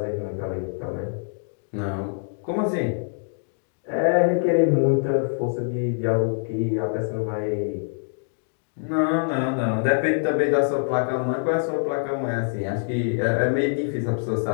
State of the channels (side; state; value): right; silent; digital silence